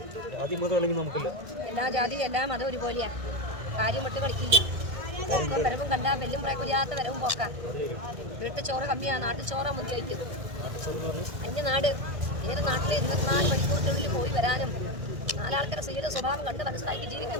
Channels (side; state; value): left; late; 1.6 ms